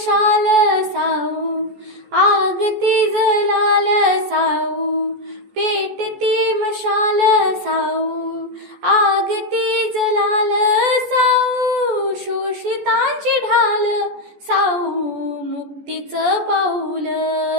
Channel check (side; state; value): left; late; 14 ms